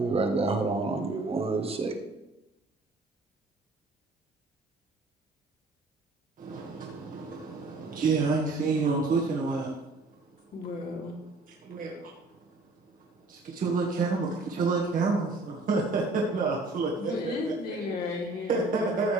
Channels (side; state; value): left; quieter; 3.0 dB